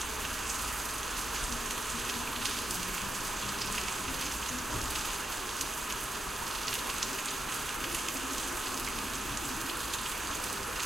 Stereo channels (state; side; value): normal; both; correlation 0.87